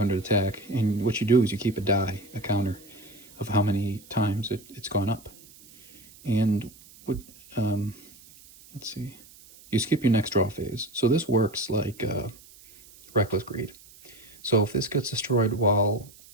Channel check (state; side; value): noise; right; hiss, 23 dB below the sound